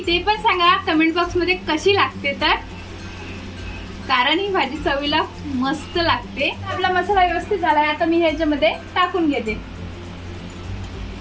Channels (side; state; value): both; identical; correlation 1.00